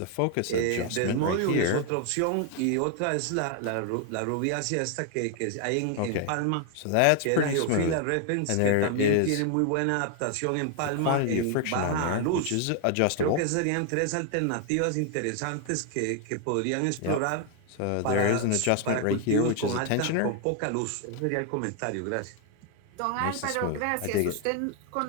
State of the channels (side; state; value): both; different; correlation 0.00